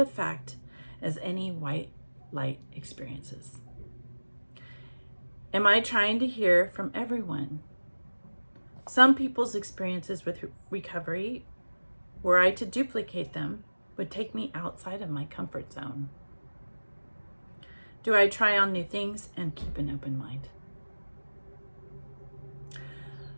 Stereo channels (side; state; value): both; inverted; correlation -1.00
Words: as any white light experiences. Am I trying to hear from everyone? Some people's experiences with recovery, were I to duplicate them, would take me outside of my comfort zone. Do I try on new things and keep an open mind?